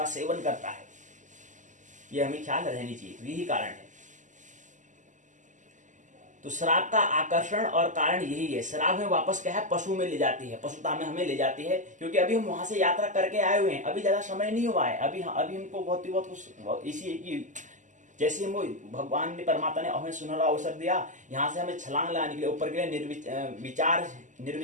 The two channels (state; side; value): late; left; 0.36 ms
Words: सेवन करता है। यह हमें ख्याल रहनी चाहिए, यही कारण है। तो शराब का आकर्षण और कारण यही है। शराब में वापस क्या है, पशु में ले जाती है, पशुता में हमें ले जाती है, क्योंकि अभी हम वहां से यात्रा करके आए हुए हैं, अभी ज्यादा समय नहीं हुआ है, अभी हमको बहुत कुछ इसी की, जैसे हम भगवान ने परमात्मा ने हमें सुनहरा अवसर दिया, यहाँ से हमें छलांग लगाने के लिए, ऊपर के लिए